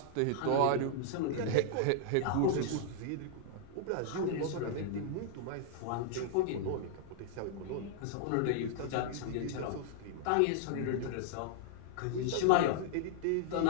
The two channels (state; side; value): different; both; correlation -0.01